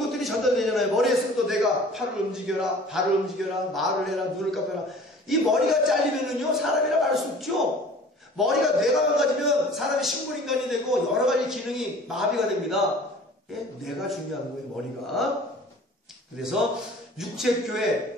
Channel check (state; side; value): normal; both; correlation 0.46